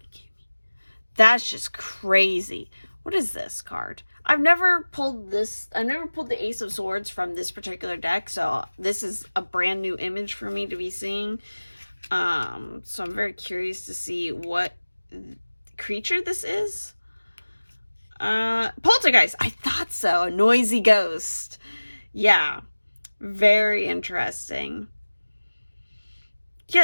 kidding me? That's just crazy. What is this card? I've never pulled this. I've never pulled the Ace of Swords from this particular deck, so this is a brand new image for me to be seeing. So I'm very curious to see what creature this is. Poltergeist. I thought so. A noisy ghost. Yeah, very interesting.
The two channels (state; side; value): inverted; both; correlation -1.00